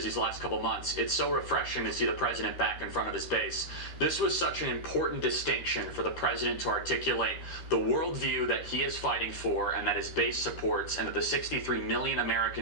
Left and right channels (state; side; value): late; right; 13 ms